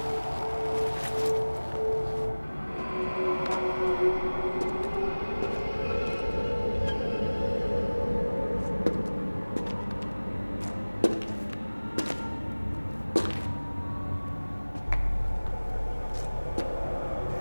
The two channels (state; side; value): inverted; both; correlation -1.00